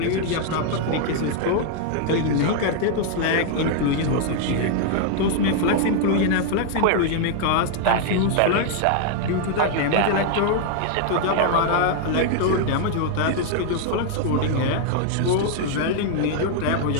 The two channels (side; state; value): both; different; correlation 0.00